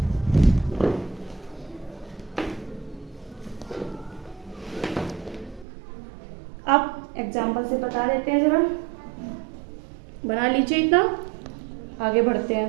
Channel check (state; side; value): drops out; left; at 5.7 s